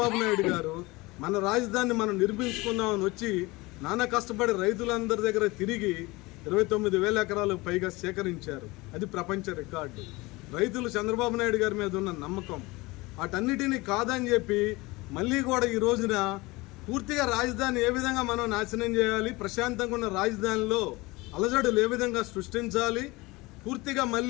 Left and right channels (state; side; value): quieter; right; 22.6 dB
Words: నాయుడు గారు మన రాజధానిని మనం నిర్మించుకుందామని వచ్చి నానా కష్టపడి రైతులందరి దగ్గర తిరిగి 29,000 ఎకరాలు పైగా సేకరించారు. అది ప్రపంచ రికార్డు. రైతులు చంద్రబాబు నాయుడు గారి మీద ఉన్న నమ్మకం వాటన్నిటినీ కాదని చెప్పి మళ్ళీ కూడా ఈ రోజున పూర్తిగా రాజధాని ఏ విధంగా మనం నాశనం చేయాలి, ప్రశాంతంగా ఉన్న రాజధానిలో అలజడులు ఏ విధంగా సృష్టించాలి, పూర్తిగా